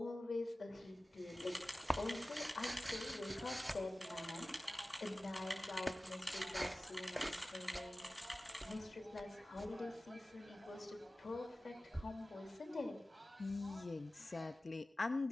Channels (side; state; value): both; normal; correlation 0.97